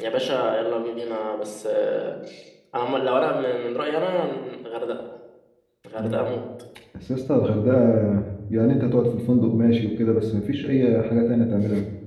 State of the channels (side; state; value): both; identical; correlation 1.00